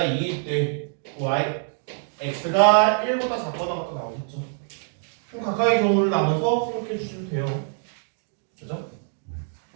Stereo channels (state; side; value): silent; left; digital silence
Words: 때 x가 1보다 작거나 같다 나오겠죠. 그럼 각각의 경우를 나눠서 생각해 주시면 돼요. 그죠?